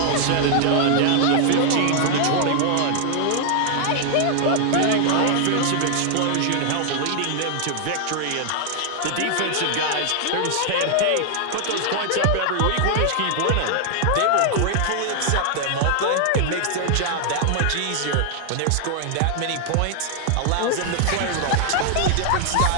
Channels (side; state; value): both; different; correlation 0.00